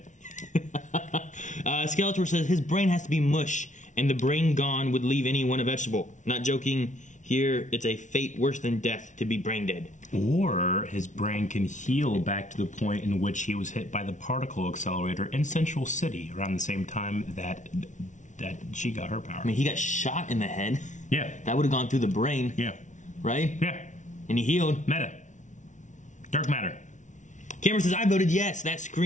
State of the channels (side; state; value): right; late; 0.36 ms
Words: Skeletor says, his brain has to be mush, and the brain gone would leave anyone a vegetable. Not joking, here it's a fate worse than death to be brain dead. Or his brain can heal back to the point in which he was hit by the particle accelerator in Central City around the same time that she got her power. I mean, he got shot in the head. Yeah. That would have gone through the brain, Yeah. right? Yeah. And he healed. Meta. Dark matter. Cameron says, I voted yes. That